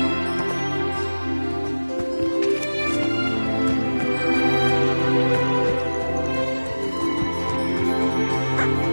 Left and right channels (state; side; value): inverted; both; correlation -1.00